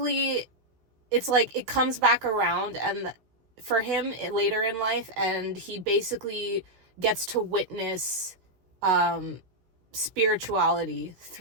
it's like it comes back around, and for him later in life, and he basically gets to witness spirituality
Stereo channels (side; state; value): left; late; 16 ms